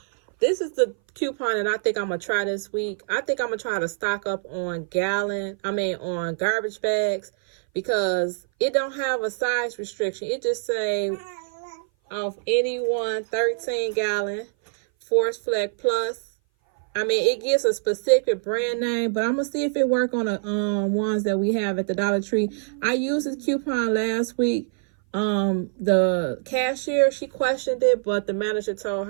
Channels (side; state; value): left; silent; 58 dB below the other